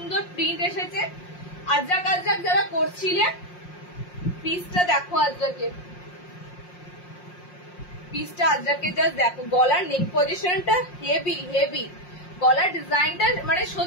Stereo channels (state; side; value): late; right; 5.6 ms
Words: প্রিন্ট এসেছে। আজরাক আজরাক যারা করছিলে, পিসটা দেখো আজরাকের, পিসটা আজরাকের জাস্ট দেখো। গলার নেক পজিশনটা হেভি হেভি, গলার ডিজাইনটা মানে